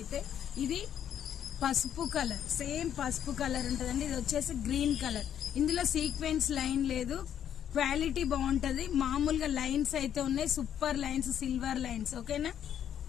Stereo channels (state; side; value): quieter; right; 9.7 dB